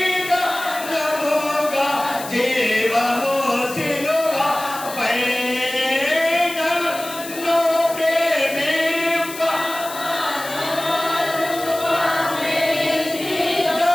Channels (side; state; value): left; noise; hiss, 12 dB below the sound